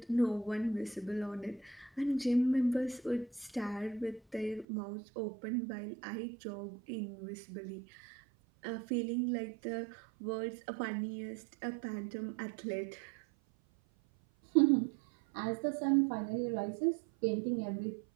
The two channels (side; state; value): left; drops out; at 4.7 s